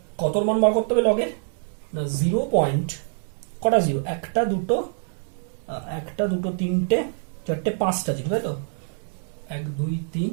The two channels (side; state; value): left; silent; digital silence